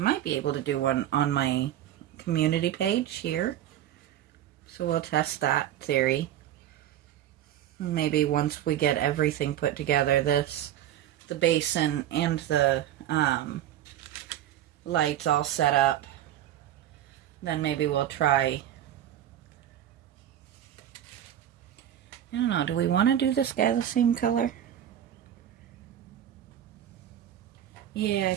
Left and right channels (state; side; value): quieter; left; 11.4 dB